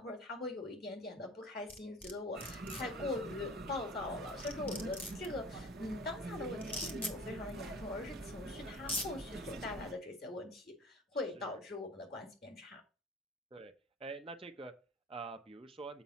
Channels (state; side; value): normal; both; correlation 0.42